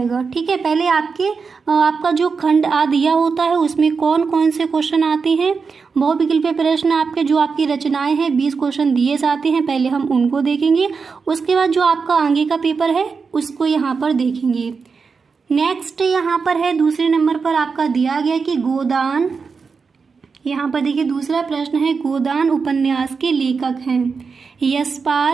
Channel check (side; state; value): left; quieter; 5.1 dB